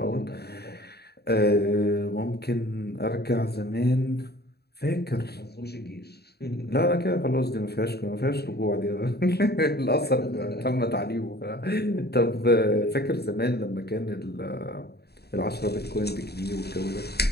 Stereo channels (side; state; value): right; late; 0.47 ms